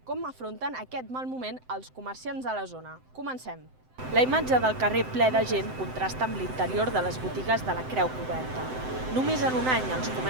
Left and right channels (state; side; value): late; left; 7.8 ms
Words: com afronten aquest mal moment els comerciants de la zona. Comencem. La imatge del carrer ple de gent contrasta amb l'interior de les botigues de la Creu Coberta. Només en un any els